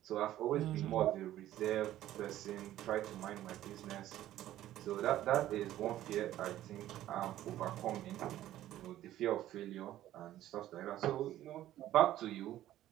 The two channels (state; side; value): quieter; left; 13.4 dB